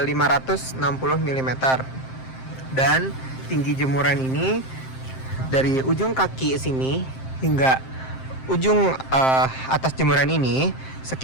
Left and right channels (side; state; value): right; late; 7.6 ms